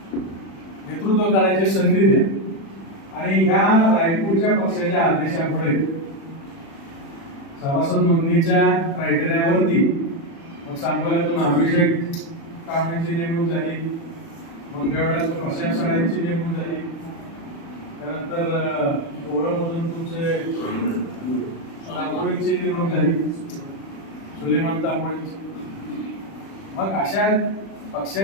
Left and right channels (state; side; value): late; right; 36 ms